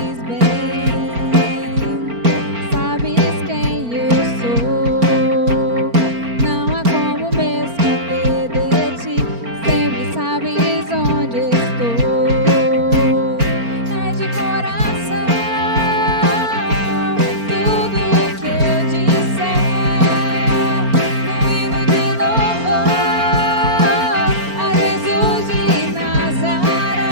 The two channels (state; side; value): late; left; 4.4 ms